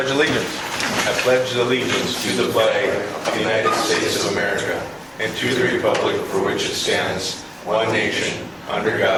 Allegiance. I pledge allegiance to the flag of the United States of America and to the republic for which it stands, one nation, under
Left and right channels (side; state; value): both; identical; correlation 1.00